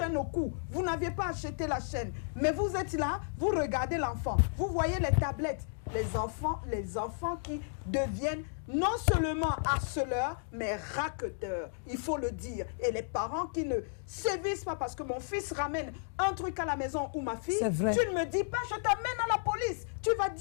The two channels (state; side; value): silent; right; digital silence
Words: au cou. Vous n'aviez pas acheté la chaîne. Mais vous êtes là, vous regardez l'enfant. Vous voyez les tablettes. Les enfants qui deviennent non seulement harceleurs, mais raqueteurs. Il faut le dire. Et les parents qui ne sévissent pas parce que mon fils ramène un truc à la maison ou ma fille, tu ne me dis pas, je t'amène à la police. Tu vas